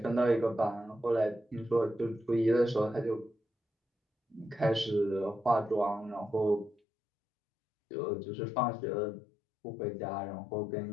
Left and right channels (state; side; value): drops out; right; at 6.8 s